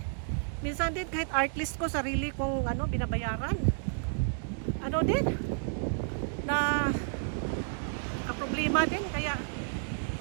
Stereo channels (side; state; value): left; silent; digital silence